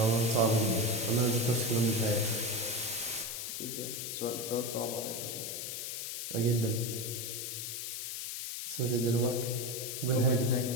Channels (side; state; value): left; noise; hiss, 5 dB below the sound